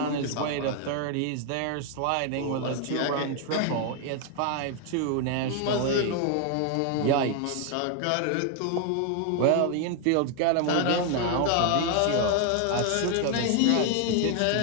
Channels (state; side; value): different; both; correlation 0.01